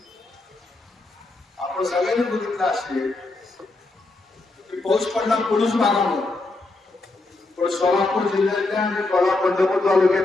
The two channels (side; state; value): right; quieter; 3.1 dB